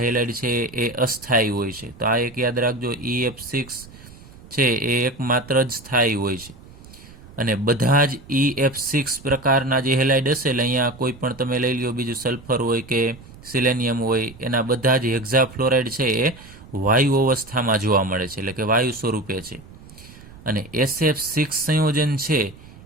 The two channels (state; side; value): noise; right; rumble, 20 dB below the sound